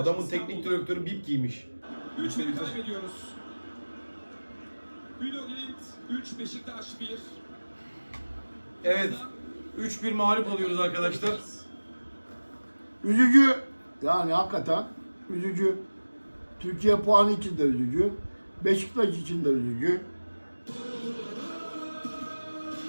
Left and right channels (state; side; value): inverted; both; correlation -1.00